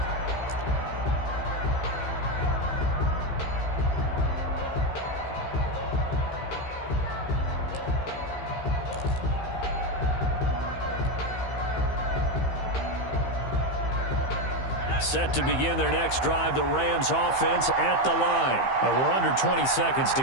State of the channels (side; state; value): right; late; 15 ms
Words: Set to begin their next drive, the Rams offense at the line. We're under 20 seconds to